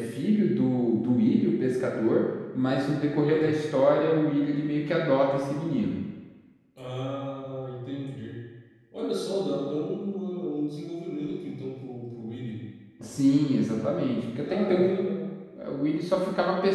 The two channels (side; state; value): both; identical; correlation 1.00